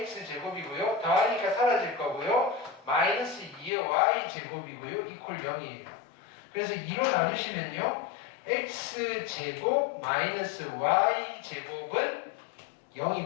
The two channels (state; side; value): drops out; right; at 3.7 s